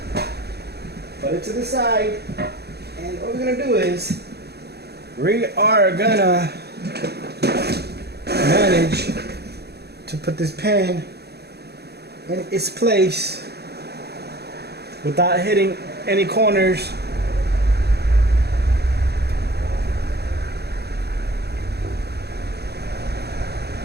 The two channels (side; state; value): left; late; 0.47 ms